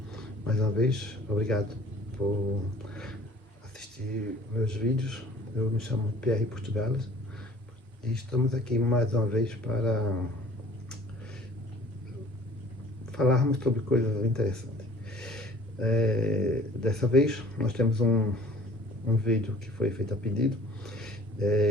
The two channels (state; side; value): normal; both; correlation 0.51